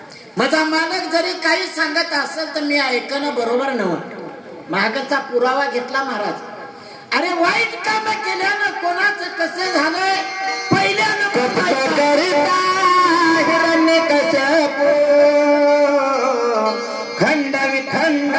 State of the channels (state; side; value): identical; both; correlation 1.00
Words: माझा मालक जरी काही सांगत असेल तर मी ऐकणं बरोबर नव्हतं. मागचा पुरावा घेतला महाराज. अरे वाईट काम केल्यानं कोणाचं कसं झालंय पहिल्यानं हिरण्यकश्यपू खंड विखंड